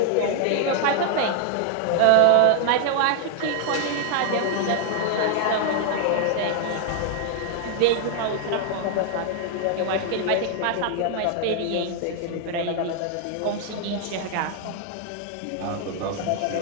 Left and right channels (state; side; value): different; both; correlation 0.00